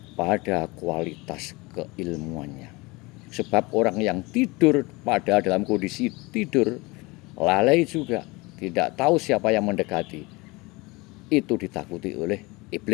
kualitas keilmuannya. Sebab orang yang tidur pada dalam kondisi tidur, lalai juga, tidak tahu siapa yang mendekati, itu ditakuti oleh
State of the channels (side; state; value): right; quieter; 24.2 dB